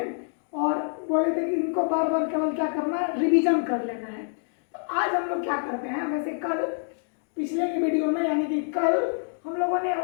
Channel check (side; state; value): right; silent; digital silence